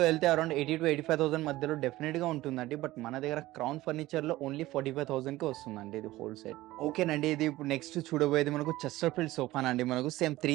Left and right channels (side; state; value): left; quieter; 17.3 dB